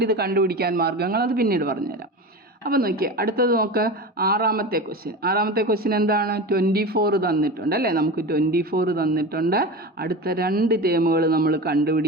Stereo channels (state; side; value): normal; both; correlation 0.28